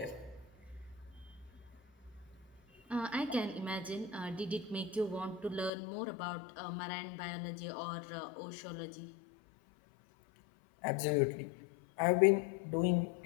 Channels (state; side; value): drops out; right; at 5.7 s